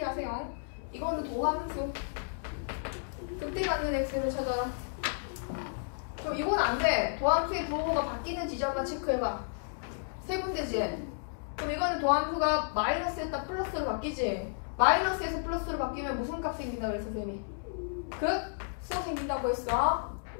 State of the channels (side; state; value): right; silent; 56 dB below the other